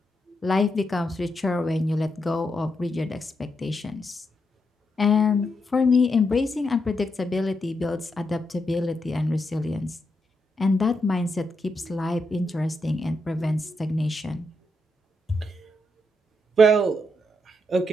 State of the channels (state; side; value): normal; both; correlation 0.82